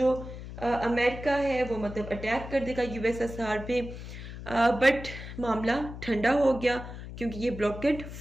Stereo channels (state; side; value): noise; left; hum, 11 dB below the sound